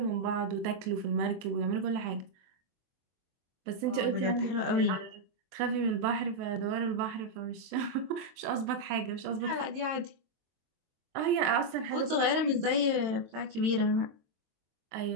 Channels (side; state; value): left; late; 22 ms